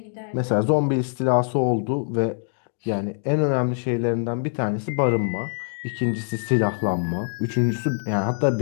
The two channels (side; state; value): right; silent; digital silence